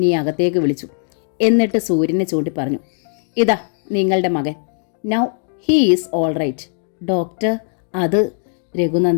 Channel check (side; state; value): right; silent; digital silence